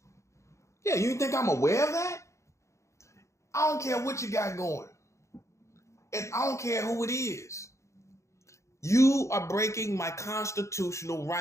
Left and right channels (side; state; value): right; late; 0.14 ms